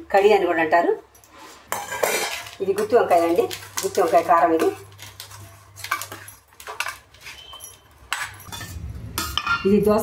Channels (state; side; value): identical; both; correlation 1.00